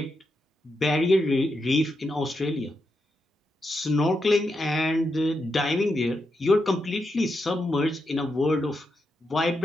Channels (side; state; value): both; normal; correlation 0.85